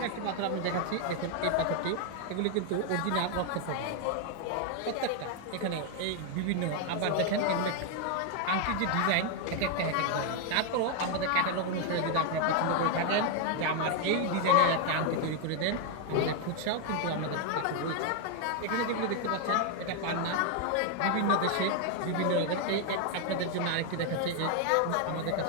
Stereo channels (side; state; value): both; different; correlation 0.01